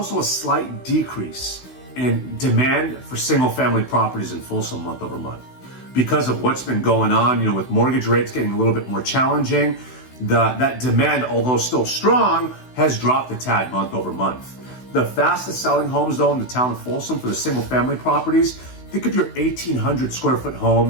a slight decrease in demand for single family properties in Folsom month over month. Because of what's been going on, with mortgage rates getting a little bit more challenging, that demand, although still strong, has dropped a tad month over month. The fastest selling homes though in the town of Folsom for the single family properties, think of your 1,800 square foot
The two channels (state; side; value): late; right; 16 ms